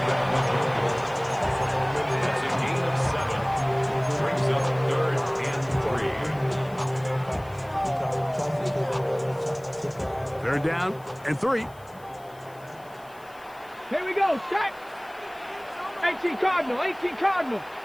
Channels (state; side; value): noise; left; hiss, 27 dB below the sound